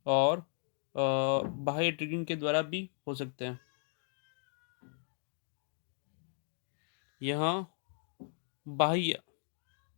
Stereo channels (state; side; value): silent; right; digital silence